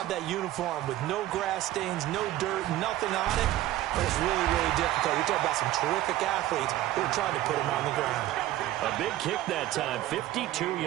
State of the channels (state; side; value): quieter; left; 14.9 dB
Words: that uniform with no grass stains, no dirt, nothing on it. But it's really, really difficult. You're talking about some terrific athletes who are trying to put him on the ground. A big kick that time, 52